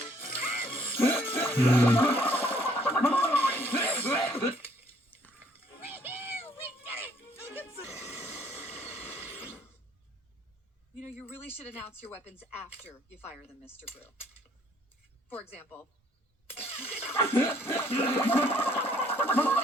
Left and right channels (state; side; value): normal; both; correlation 0.63